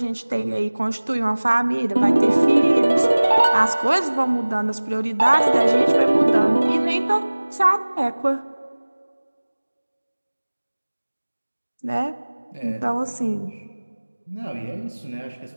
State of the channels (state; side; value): inverted; both; correlation -1.00